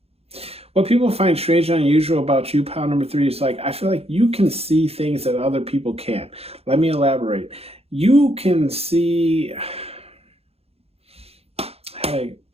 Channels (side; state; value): left; late; 0.29 ms